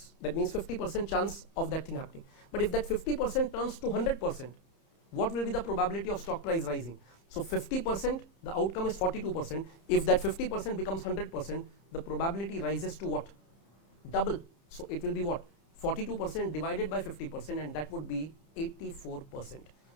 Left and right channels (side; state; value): right; late; 30 ms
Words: That means 50% chance of that thing happening. But if that 50% turns to 100%, what will be the probability of stock price rising? So 50%, the outcome is 42%. If that 50% becomes 100%, the probability rises to what? Double. So it will be what? 42% divided by 50%, and that would be 84%.